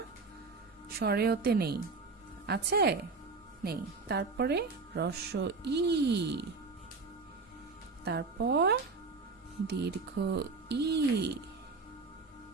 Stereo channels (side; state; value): left; quieter; 4.2 dB